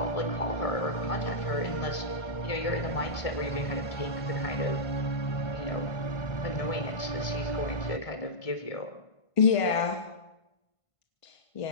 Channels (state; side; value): late; right; 1.5 ms